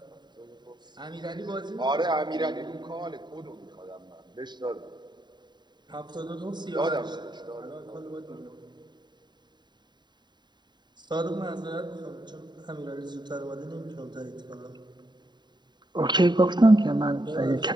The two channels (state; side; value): late; left; 0.21 ms